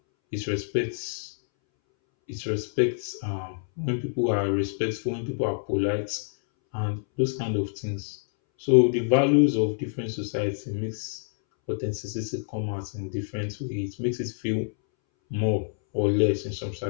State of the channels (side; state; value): right; silent; 60 dB below the other